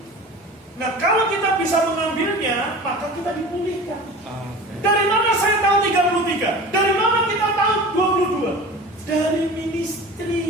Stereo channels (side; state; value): both; normal; correlation 0.37